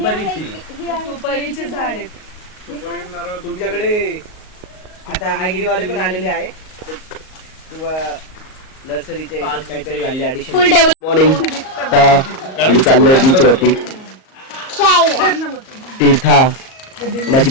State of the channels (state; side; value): late; right; 38 ms